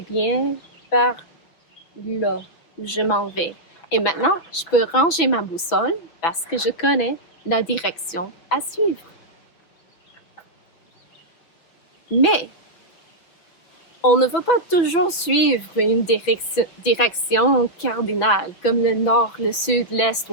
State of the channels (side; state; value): right; late; 6.0 ms